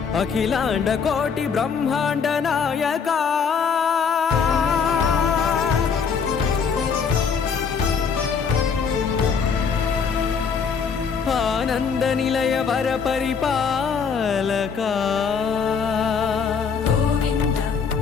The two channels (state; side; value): quieter; right; 6.1 dB